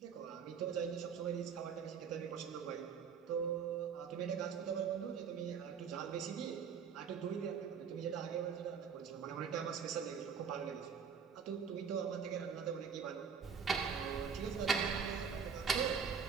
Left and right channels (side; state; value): left; quieter; 6.7 dB